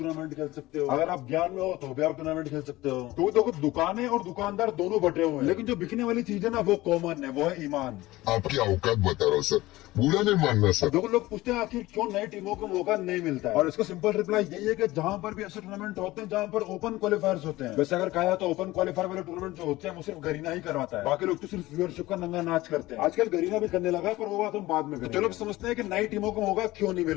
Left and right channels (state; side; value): quieter; right; 18.2 dB